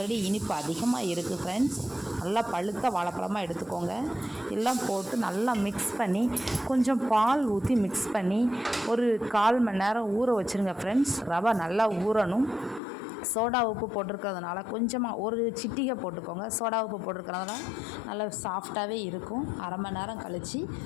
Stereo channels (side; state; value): right; drops out; at 12.8 s